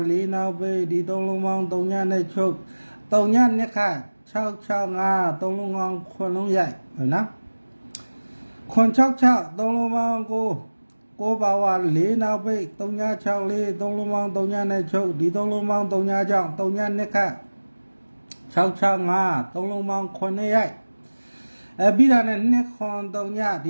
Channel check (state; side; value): inverted; both; correlation -1.00